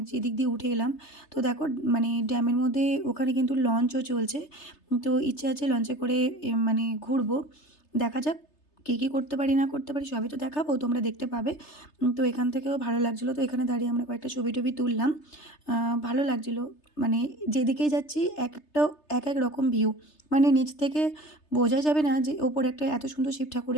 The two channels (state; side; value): late; right; 3.3 ms